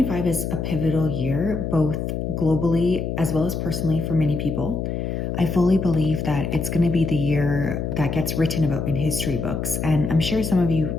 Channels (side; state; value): left; noise; hum, 3 dB below the sound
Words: is a pivotal year, both globally as well as personally for many people. I fully believe that it's going to be the year that gets written about in history books, and I'm sure some of you